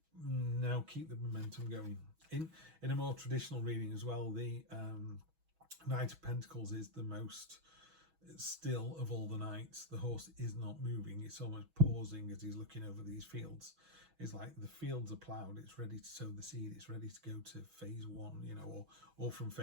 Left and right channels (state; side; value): late; left; 6.2 ms